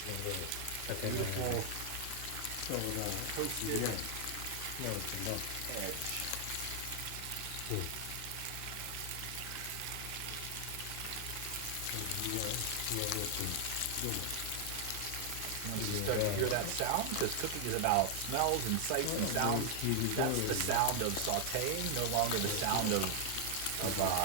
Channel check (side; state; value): both; different; correlation 0.00